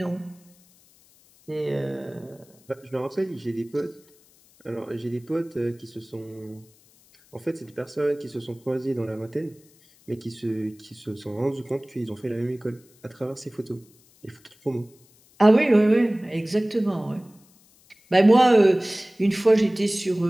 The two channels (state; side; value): noise; left; hiss, 30 dB below the sound